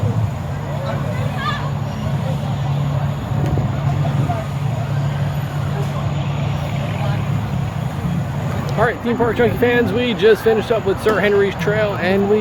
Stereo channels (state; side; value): identical; both; correlation 1.00